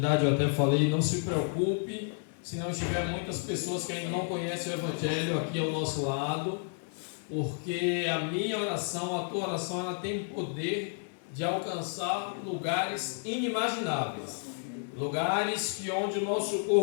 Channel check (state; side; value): silent; right; 57 dB below the other